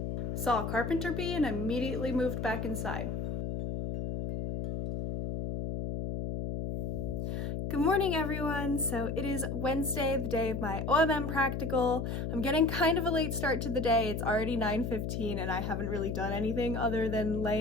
saw a carpenter bee, and immediately moved back inside. Good morning, everyone. So it is Wednesday, the day of my OMM practical. I'm getting kind of a late start to the day. It's already 9:15 and I haven't really done anything other than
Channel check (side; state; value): left; noise; hum, 3 dB below the sound